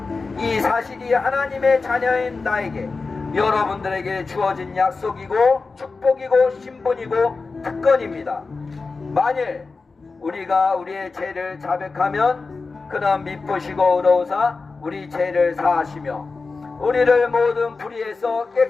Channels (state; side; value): quieter; right; 4.1 dB